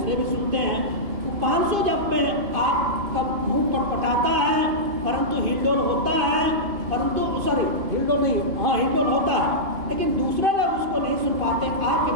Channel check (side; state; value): left; late; 2.5 ms